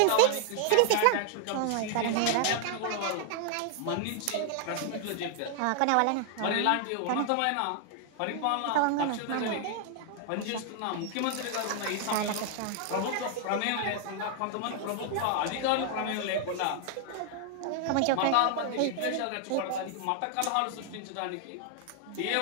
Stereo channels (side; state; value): both; different; correlation 0.00